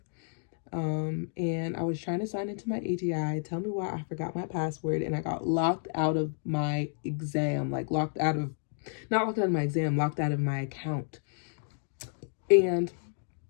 And I was trying to sign into my ATI. Tell me why I forgot my password, and I got locked out of my exam. Like locked out of my exam, locked out of my account. And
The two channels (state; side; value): silent; right; digital silence